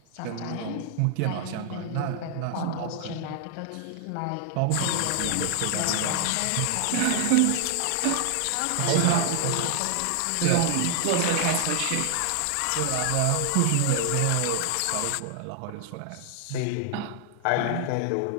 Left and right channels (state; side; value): different; both; correlation 0.00